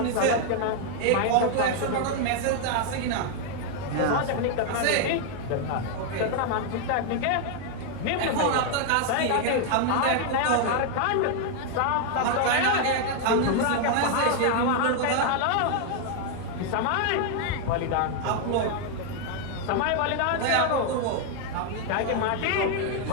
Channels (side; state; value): both; different; correlation 0.00